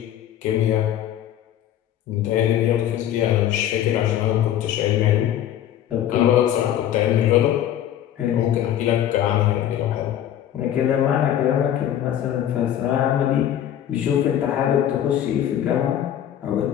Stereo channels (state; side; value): quieter; right; 11.1 dB